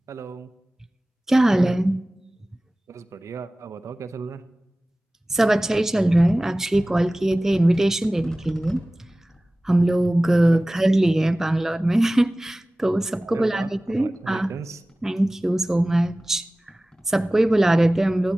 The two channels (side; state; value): both; normal; correlation 0.98